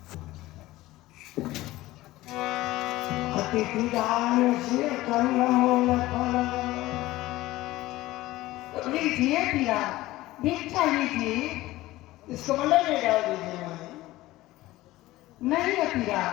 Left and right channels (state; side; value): quieter; right; 17.5 dB